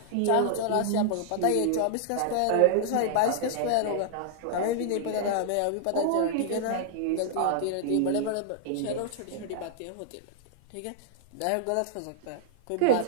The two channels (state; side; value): different; both; correlation 0.00